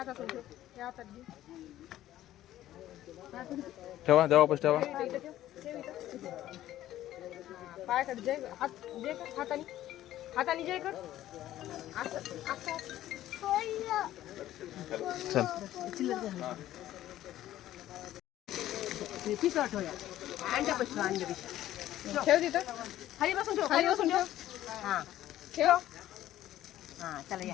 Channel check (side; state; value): right; quieter; 13.5 dB